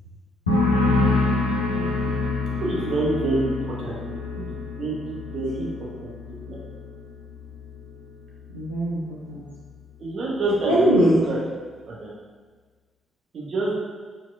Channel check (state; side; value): normal; both; correlation 0.68